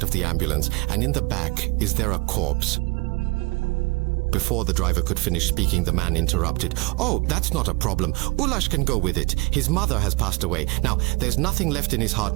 of the ambulance, and in the back, is there a corpse?" Before the driver could finish speaking, the man interrupted. "Oh, that's not a problem. Ulash can go with it. His mother has passed away. Now, there's nothing left in his heart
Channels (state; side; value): quieter; left; 23.7 dB